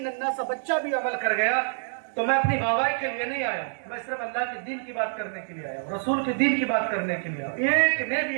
ننھا سا بچہ بھی عمل کر گیا تو میں اپنی بابائی کے لیے نہیں آیا ہوں، میں صرف اللہ کے دین کی بات کرنے کے لیے آیا ہوں، رسول کے دین کی بات کرنے کے لیے آیا ہوں۔ ایک نے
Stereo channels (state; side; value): silent; left; digital silence